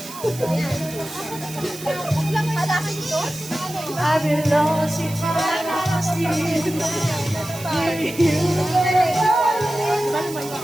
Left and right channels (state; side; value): noise; right; hiss, 13 dB below the sound